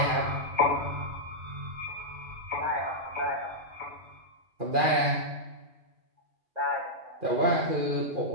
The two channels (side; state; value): left; late; 2.4 ms